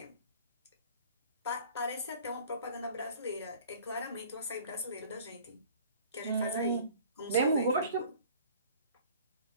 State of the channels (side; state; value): both; inverted; correlation -0.48